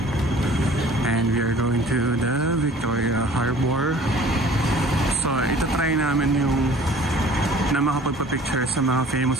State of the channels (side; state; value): both; normal; correlation 0.50